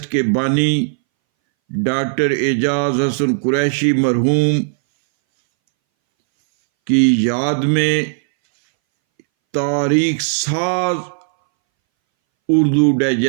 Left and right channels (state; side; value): silent; left; 65 dB below the other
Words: کے بانی ڈاکٹر اعجاز حسن قریشی مرحوم کی یاد میں تاریخ ساز اردو